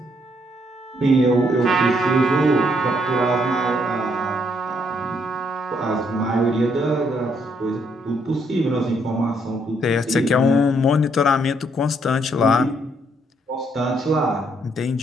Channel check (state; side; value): normal; both; correlation 0.72